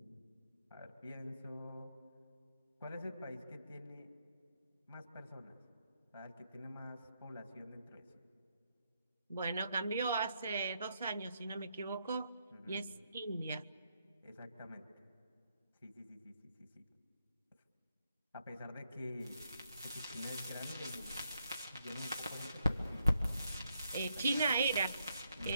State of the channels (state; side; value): inverted; both; correlation -0.78